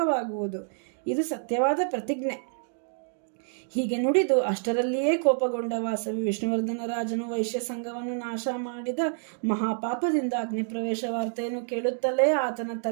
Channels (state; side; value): silent; left; digital silence